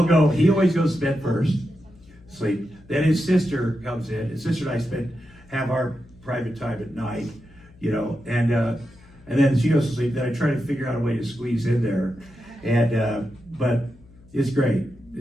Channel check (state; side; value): noise; left; hum, 25 dB below the sound